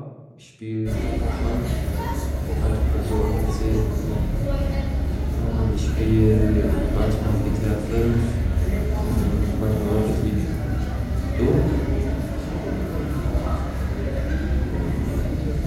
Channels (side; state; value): both; identical; correlation 1.00